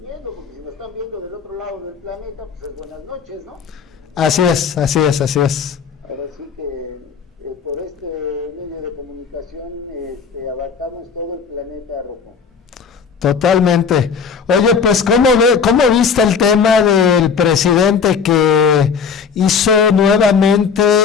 viendo, porque si nos están viendo del otro lado del planeta, pues es buenas noches, ¿no? Así es. Ahora sí que por este medio de comunicación abarcamos todo el planeta, Rocco. Totalmente. Oye, pues ¿cómo viste el tema del presidente que hizo nuevamente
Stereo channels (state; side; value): quieter; right; 6.1 dB